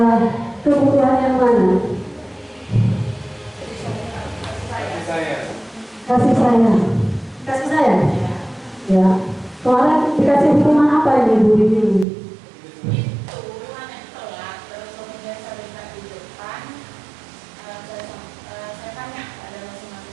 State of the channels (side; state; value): left; drops out; at 12.1 s